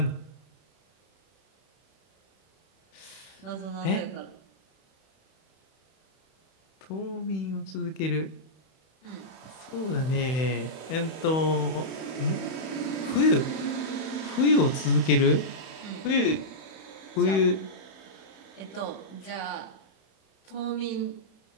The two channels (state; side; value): late; right; 31 ms